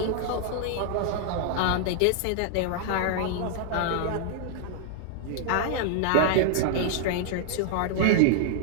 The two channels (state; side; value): different; both; correlation -0.01